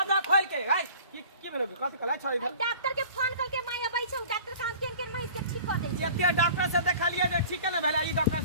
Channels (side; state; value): both; inverted; correlation -0.45